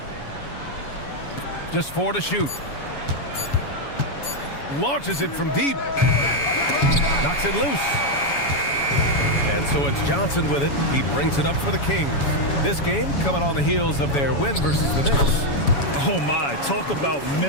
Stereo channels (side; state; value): right; late; 7.1 ms